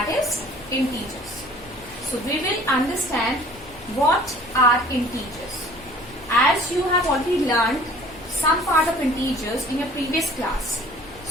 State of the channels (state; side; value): noise; left; rumble, 22 dB below the sound